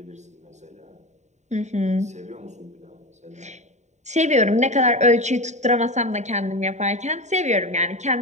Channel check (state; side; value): late; left; 0.34 ms